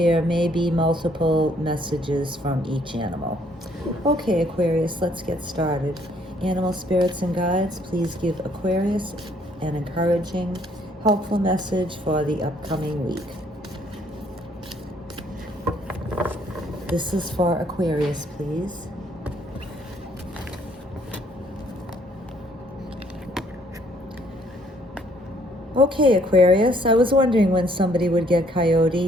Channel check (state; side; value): normal; both; correlation 0.65